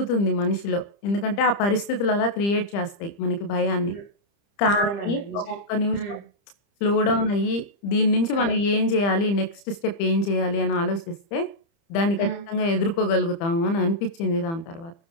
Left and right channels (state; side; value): late; right; 30 ms